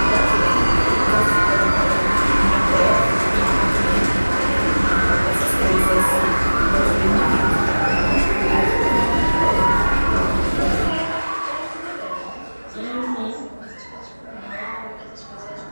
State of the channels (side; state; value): both; inverted; correlation -1.00